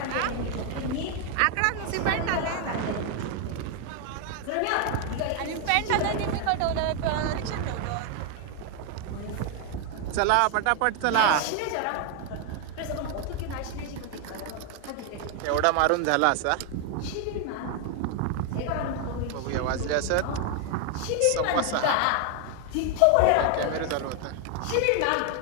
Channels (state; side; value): different; both; correlation 0.01